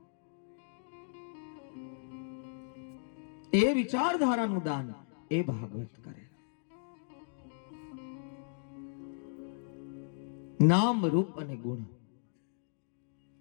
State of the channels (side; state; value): right; silent; digital silence